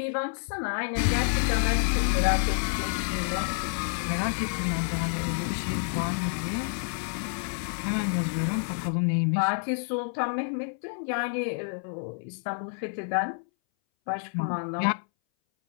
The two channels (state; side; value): silent; right; 59 dB below the other